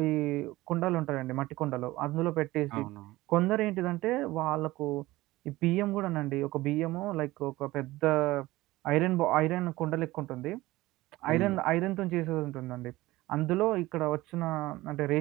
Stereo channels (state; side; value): quieter; left; 18.4 dB